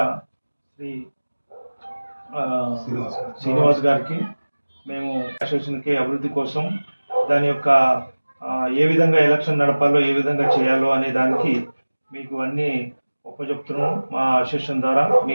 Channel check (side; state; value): both; inverted; correlation -1.00